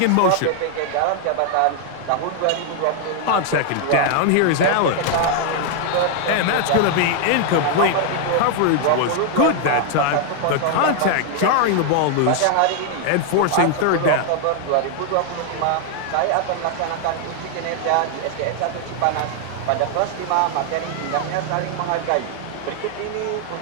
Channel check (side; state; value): both; different; correlation 0.00